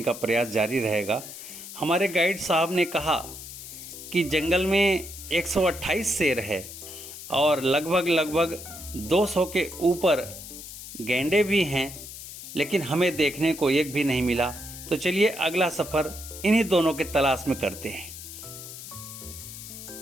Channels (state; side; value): noise; left; hiss, 12 dB below the sound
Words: का प्रयास जारी रहेगा। हमारे गाइड साहब ने कहा कि जंगल में 128 शेर है और लगभग 200 के ऊपर गेंडे भी हैं, लेकिन हमें देखने को एक भी नहीं मिला। तो चलिए अगला सफ़र इन्हीं दोनों के तलाश में करते हैं।